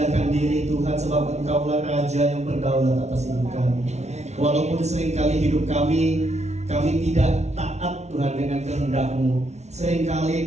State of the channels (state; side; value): late; left; 0.32 ms